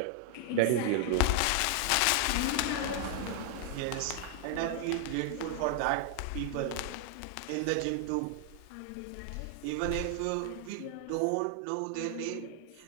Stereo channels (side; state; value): both; different; correlation 0.00